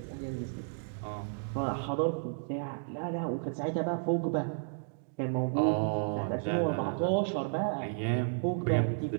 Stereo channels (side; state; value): left; silent; digital silence